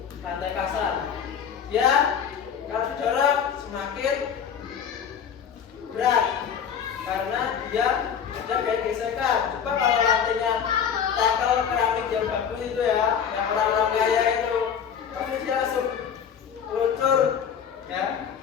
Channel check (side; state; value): right; quieter; 7.8 dB